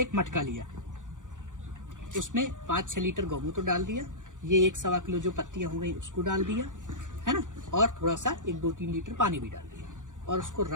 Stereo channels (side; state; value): left; late; 0.87 ms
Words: मटका लिया, उसमें 5-6 लीटर गौमूत्र डाल दिया, ये 1-1.25 किलो जो पत्तियां हो गई उसको डाल दिया, है ना, और थोड़ा सा 1-2-3 लीटर पानी भी डाल दिया, और उसको